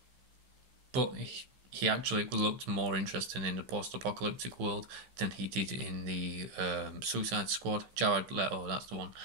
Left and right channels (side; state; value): left; late; 15 ms